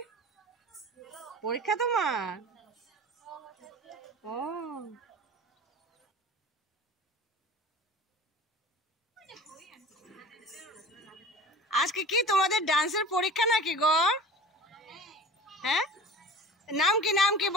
পরীক্ষা তোমার? ও, আজকে কি তোমাদের ডান্সের পরীক্ষা নাকি গো? হ্যাঁ, নাম কি নাম কি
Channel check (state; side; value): normal; both; correlation 0.39